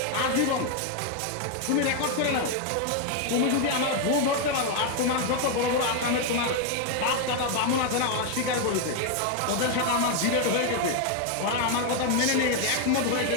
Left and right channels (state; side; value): different; both; correlation 0.01